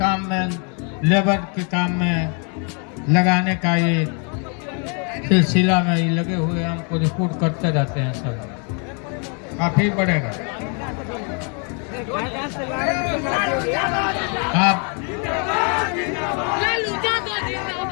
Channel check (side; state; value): right; quieter; 38.2 dB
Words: में, लेबर के काम में लगाने का ये सिलसिला में ये लगे हुए, हमको रिपोर्ट करते रहते हैं। सब काफी बढ़ेगा। आप